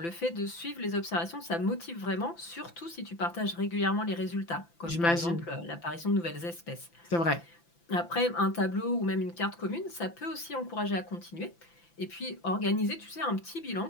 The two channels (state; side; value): late; right; 5.9 ms